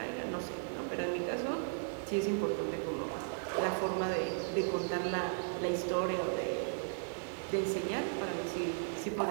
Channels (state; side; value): silent; left; 54 dB below the other